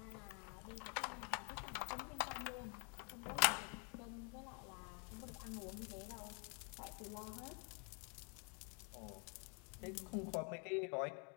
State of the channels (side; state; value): right; quieter; 36.3 dB